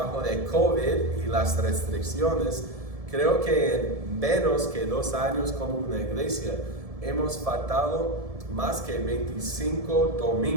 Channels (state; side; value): late; left; 1.7 ms